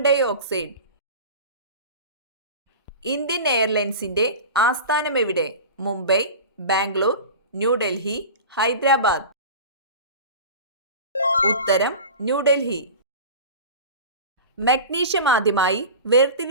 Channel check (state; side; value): inverted; both; correlation -0.33